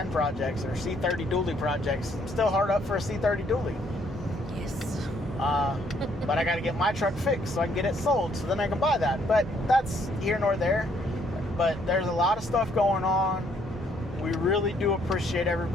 projects, or C30 dually projects. I'm still hard up for a C30 dually. Yes. But I got to get my truck fixed so I can get it sold, so then I can buy that. But that's here nor there. But there's a lot of stuff going on. We really do appreciate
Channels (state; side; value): normal; both; correlation 0.68